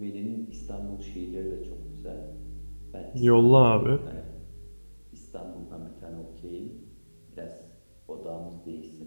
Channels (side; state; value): both; inverted; correlation -1.00